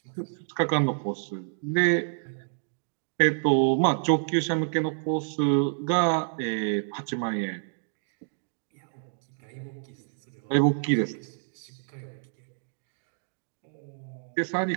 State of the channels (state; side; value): silent; left; digital silence